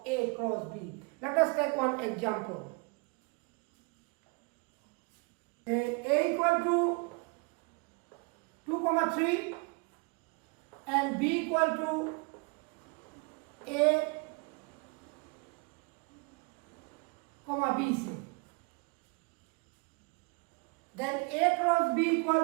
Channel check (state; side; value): quieter; left; 30.8 dB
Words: A cross B. Let us take one example. A equal to 2, 3 and B equal to A, B C. Then A cross B